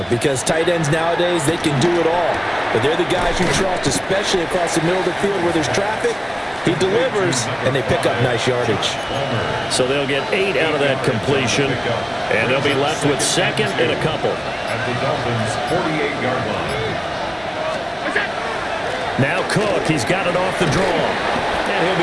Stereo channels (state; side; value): identical; both; correlation 1.00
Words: because tight ends nowadays, they can do it all. But they're the guys you trust, especially across the middle of the field where there's traffic. He delivers, and they pick up nice yardage. So they'll get 8 out of that completion, and they'll be left with 2nd and a couple. At the Dolphins' 48-yard line. Now Cook, he's got it off the draw. And he'll